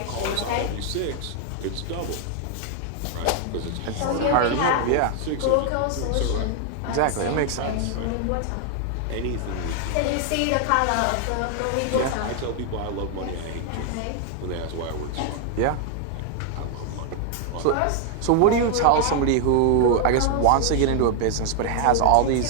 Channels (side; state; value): both; different; correlation 0.00